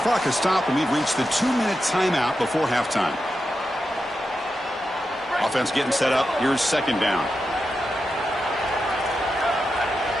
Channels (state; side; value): normal; both; correlation 0.89